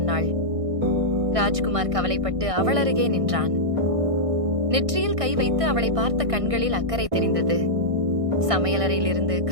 ராஜ்குமார் கவலைப்பட்டு அவள் அருகே நின்றான். நெற்றியில் கை வைத்து அவளை பார்த்த கண்களில் அக்கறை தெரிந்தது. சமையலறையிலிருந்து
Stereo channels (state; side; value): late; left; 1.6 ms